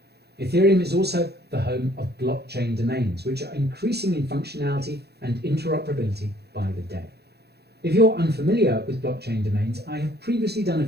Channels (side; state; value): left; late; 0.47 ms